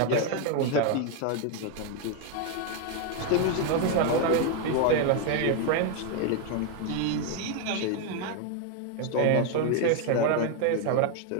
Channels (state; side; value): different; both; correlation 0.01